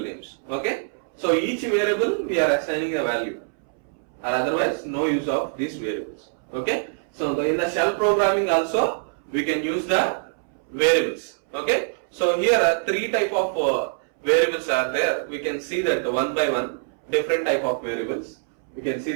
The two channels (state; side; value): silent; left; 63 dB below the other